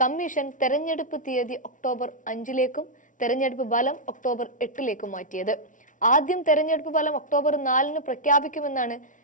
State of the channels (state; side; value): late; right; 0.37 ms